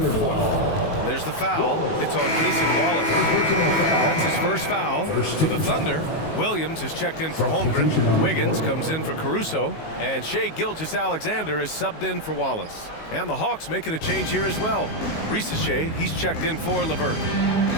forth. There's the foul. It's on Cason Wallace. That's his first foul for the Thunder. Williams is checked in for Holmgren. Wiggins comes in for Caruso. And Shai Gilgeous-Alexander is subbed in for Wallace. And the Hawks making a change here as well. Risacher, he's checked in for LeVert.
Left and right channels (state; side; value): late; right; 19 ms